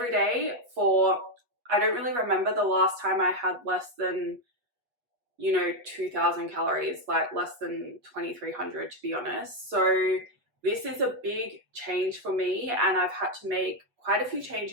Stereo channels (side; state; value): left; late; 8.2 ms